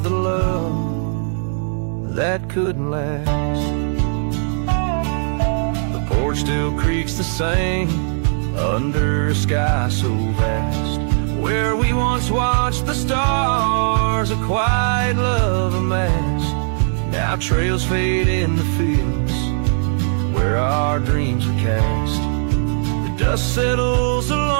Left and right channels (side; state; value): left; silent; 58 dB below the other